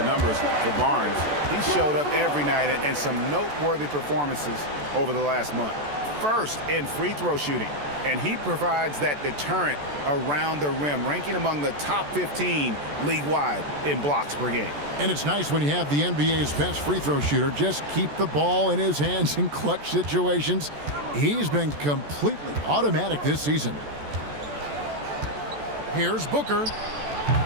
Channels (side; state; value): left; late; 14 ms